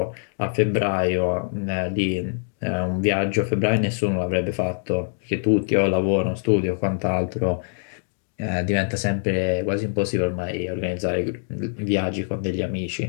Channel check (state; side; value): silent; right; digital silence